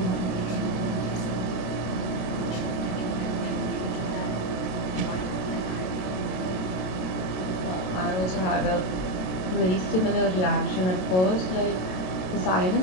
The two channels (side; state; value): right; late; 27 ms